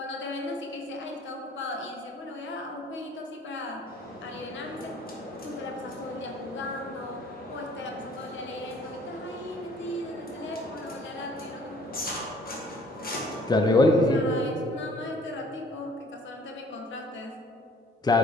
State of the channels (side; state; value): both; normal; correlation 0.55